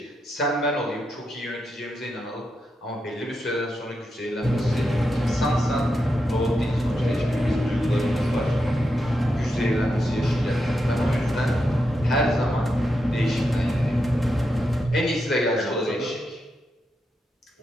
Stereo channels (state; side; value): normal; both; correlation 0.86